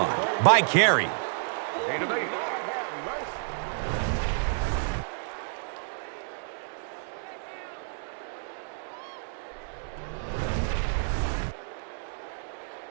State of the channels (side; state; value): left; silent; digital silence